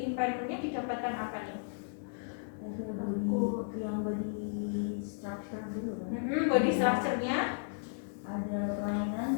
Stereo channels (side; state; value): right; silent; digital silence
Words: Impairmentnya didapatkan apa nih? Yang body structure dulu kan? Body structure-nya ada